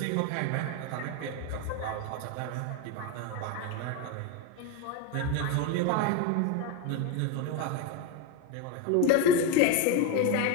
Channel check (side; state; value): both; different; correlation 0.03